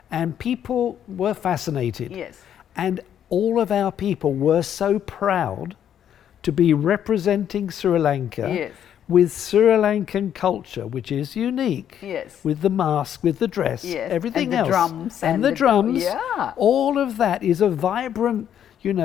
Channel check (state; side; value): quieter; right; 9.7 dB